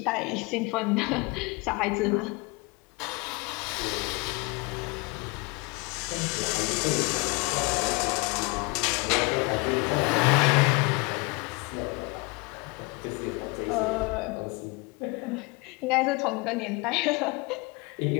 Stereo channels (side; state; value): right; quieter; 27.5 dB